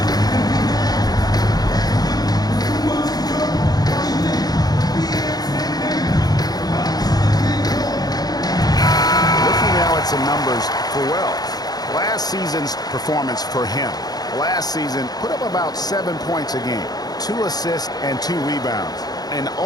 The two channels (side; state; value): right; late; 0.19 ms